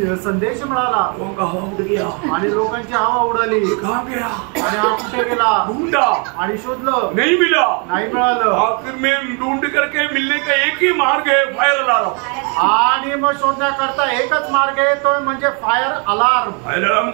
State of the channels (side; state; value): left; quieter; 35.9 dB